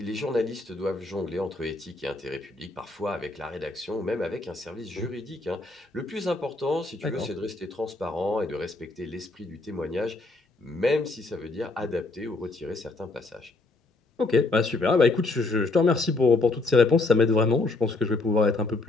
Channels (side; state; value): right; quieter; 3.3 dB